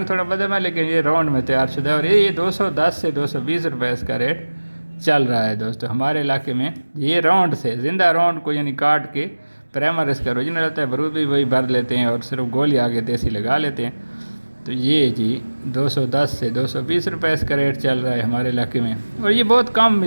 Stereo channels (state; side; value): inverted; both; correlation -1.00